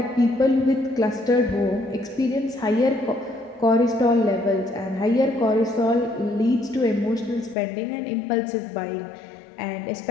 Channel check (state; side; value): drops out; right; at 7.6 s